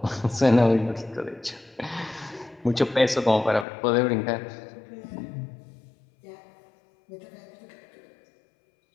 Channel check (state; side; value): drops out; right; at 3.7 s